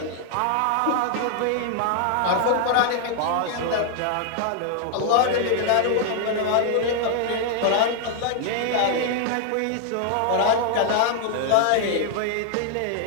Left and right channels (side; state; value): both; different; correlation 0.00